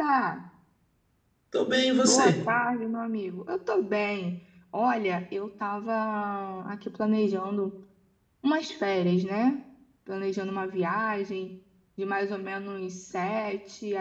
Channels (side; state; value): both; identical; correlation 1.00